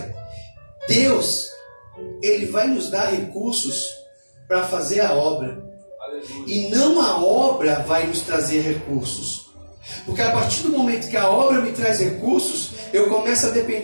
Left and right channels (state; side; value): inverted; both; correlation -1.00